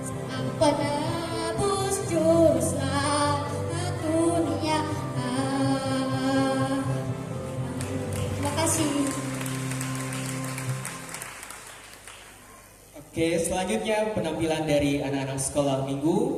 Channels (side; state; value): both; identical; correlation 1.00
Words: sang penebus juru selamat dunia. Terima kasih. Oke, selanjutnya penampilan dari anak-anak sekolah